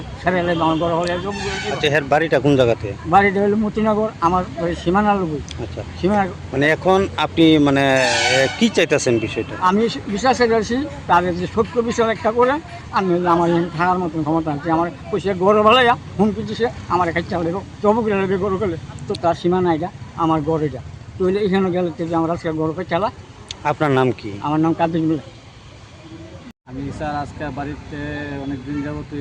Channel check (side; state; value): both; identical; correlation 1.00